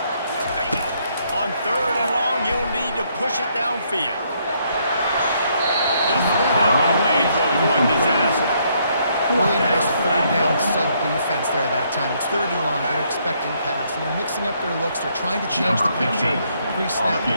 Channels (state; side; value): inverted; both; correlation -0.71